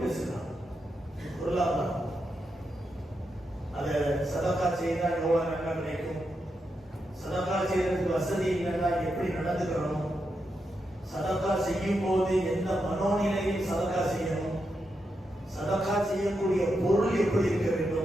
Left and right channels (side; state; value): both; normal; correlation 0.85